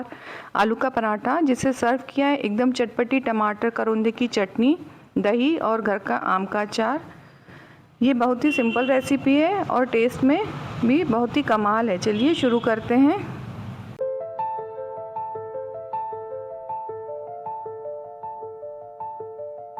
आलू का पराठा, जिसे सर्व किया है एकदम चटपटी टमाटर करौंदे की चटनी, दही और घर का आम का अचार। ये बहुत ही सिंपल रेसिपी है और टेस्ट में भी बहुत ही कमाल है। चलिए शुरू करते हैं।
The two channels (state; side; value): identical; both; correlation 1.00